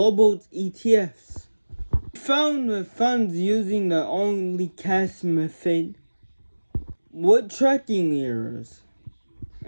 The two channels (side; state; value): both; inverted; correlation -1.00